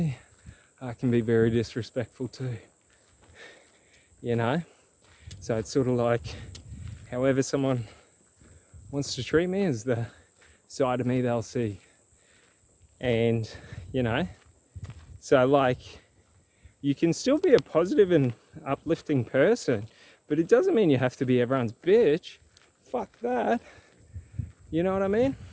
I can be very disrespectful too. You know? So it's sort of like, however someone wants to treat me is the side of me they'll see. And, you know, so like, you can still be a positive and uplifting person, but it doesn't mean you have to be everyone's bitch. Fuck that. You know what I mean?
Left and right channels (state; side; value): identical; both; correlation 1.00